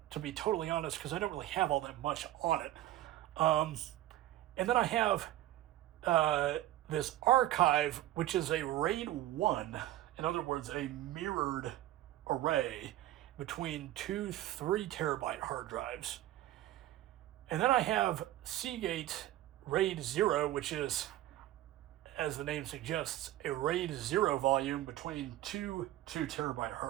to be totally honest, because I don't really have all that much on it. And then I have this archive, which is a RAID 1, in other words, a mirrored array between two 3 terabyte hard drives. And then I have Seagate RAID 0, which is, as the name suggests, a RAID 0 volume between two 2 terabyte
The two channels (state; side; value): quieter; left; 14.5 dB